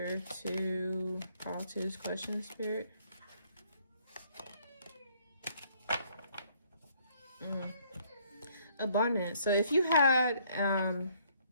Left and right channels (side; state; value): both; inverted; correlation -0.65